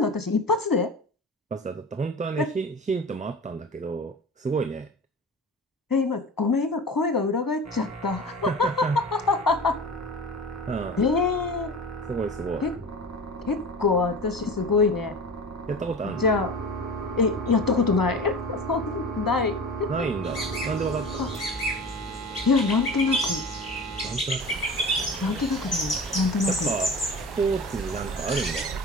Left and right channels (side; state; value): both; normal; correlation 0.34